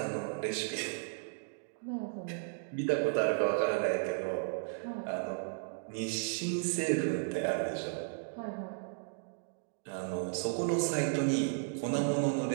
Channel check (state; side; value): silent; left; digital silence